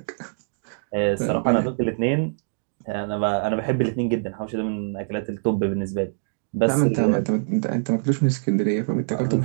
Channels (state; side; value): silent; left; digital silence